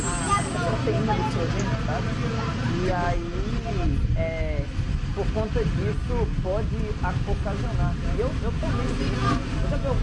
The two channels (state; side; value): identical; both; correlation 1.00